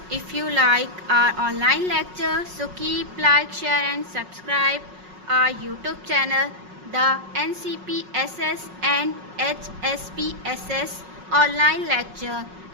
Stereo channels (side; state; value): left; late; 5.4 ms